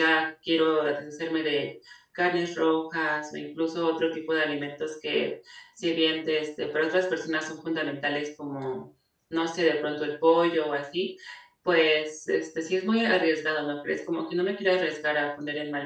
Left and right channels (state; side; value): identical; both; correlation 1.00